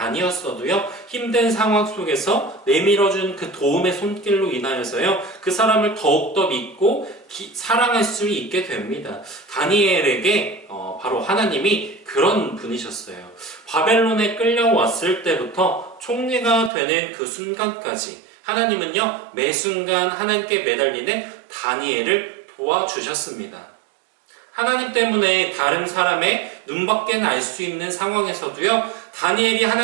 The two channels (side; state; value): left; drops out; at 16.7 s